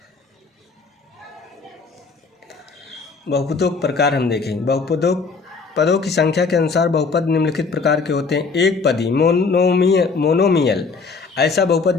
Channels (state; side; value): quieter; right; 4.6 dB